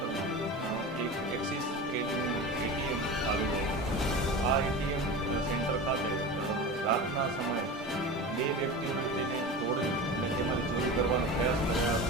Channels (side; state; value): both; normal; correlation 0.29